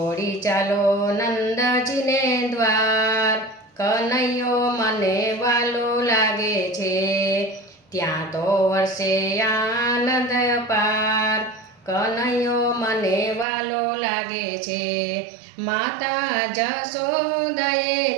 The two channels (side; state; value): left; drops out; at 13.5 s